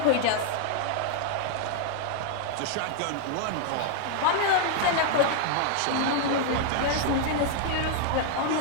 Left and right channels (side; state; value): both; different; correlation 0.00